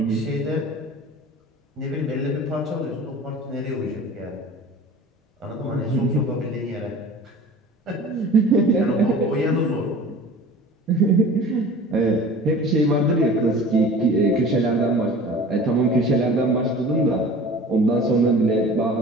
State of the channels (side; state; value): both; normal; correlation 0.42